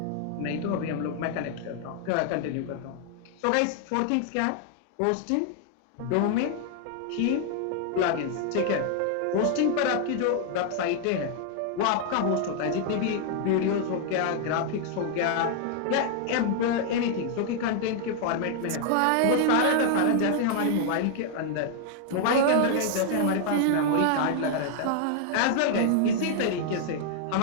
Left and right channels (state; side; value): different; both; correlation 0.00